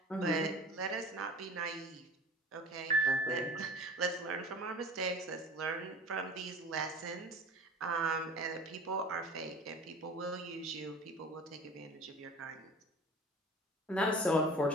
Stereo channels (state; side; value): normal; both; correlation 0.41